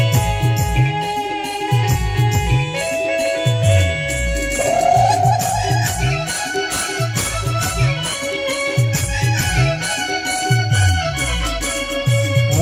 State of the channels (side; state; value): both; identical; correlation 1.00